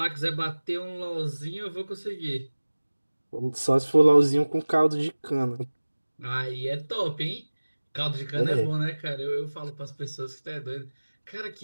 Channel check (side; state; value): both; inverted; correlation -1.00